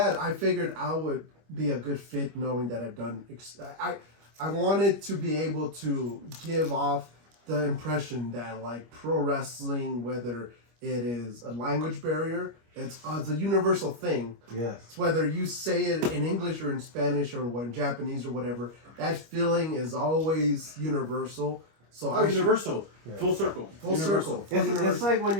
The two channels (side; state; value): left; late; 25 ms